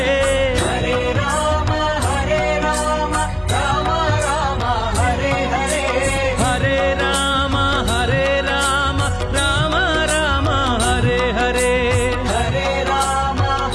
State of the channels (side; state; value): both; identical; correlation 1.00